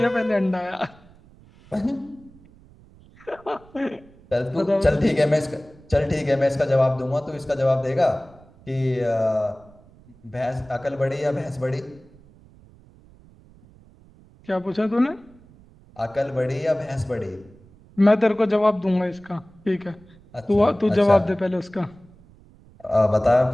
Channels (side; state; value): right; noise; rumble, 26 dB below the sound